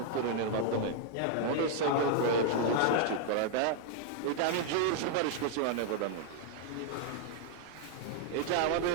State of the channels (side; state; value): both; different; correlation 0.00